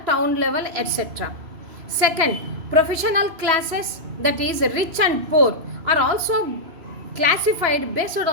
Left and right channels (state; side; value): late; left; 3.2 ms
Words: town level, etc. Second, professional classes, that is rich and poor, are also classified based